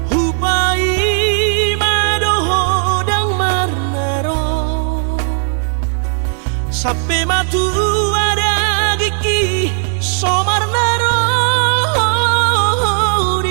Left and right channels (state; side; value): silent; left; digital silence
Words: hupai madoho dang marnaro sampai matu ada gigi somarnaro